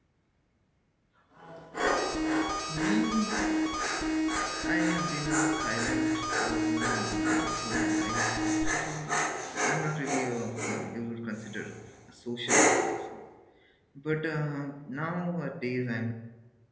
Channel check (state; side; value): identical; both; correlation 1.00